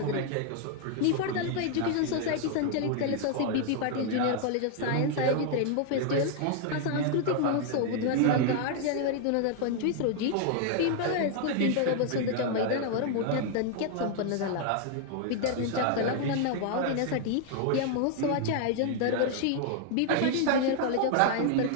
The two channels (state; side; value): different; both; correlation 0.00